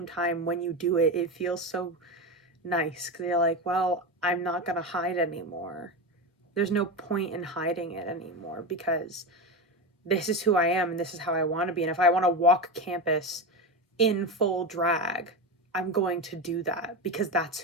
time, when you do it, it feels so nice because you're like, well, I'm not going to hide anymore. There's no point in hiding it anymore because this is who I am and this is how I want to be. And if I want to walk campus in full drag, I'm going to do that because that's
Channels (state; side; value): normal; both; correlation 0.18